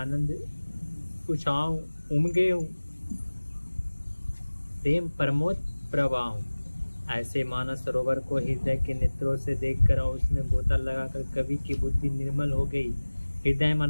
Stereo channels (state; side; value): inverted; both; correlation -1.00